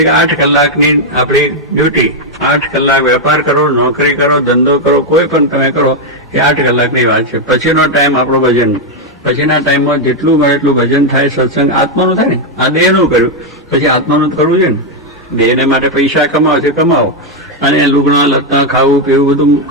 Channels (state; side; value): normal; both; correlation 0.01